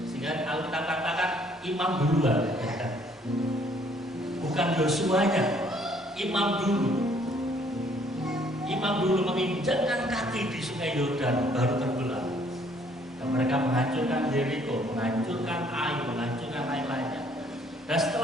Sehingga kalau kita katakan imam duluan, bukan Yosuanya, imam dulu. Imam dulu menginjakkan kaki di sungai Yordan, baru terbelah. Dan mereka menghancurkan Yeriko, menghancurkan Ai, menghancurkan lain-lainnya. Dan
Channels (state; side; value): normal; both; correlation 0.63